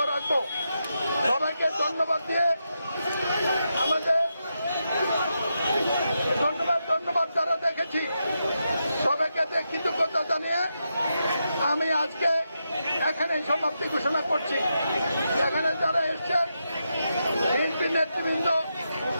রাখবো। সবাইকে ধন্যবাদ দিয়ে আমাদের ধন্যবাদ যারা দেখেছি সবাইকে কৃতজ্ঞতা জানিয়ে আমি আজকে এখানে সমাপ্তি ঘোষণা করছি। এখানে যারা এসছেন বিএনপি নেতৃবৃন্দ,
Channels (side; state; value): both; inverted; correlation -0.85